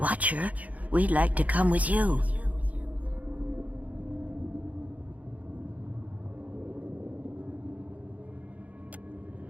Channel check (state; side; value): late; left; 0.072 ms